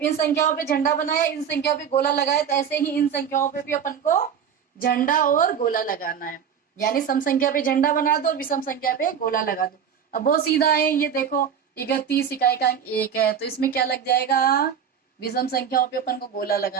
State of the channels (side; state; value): left; quieter; 7.8 dB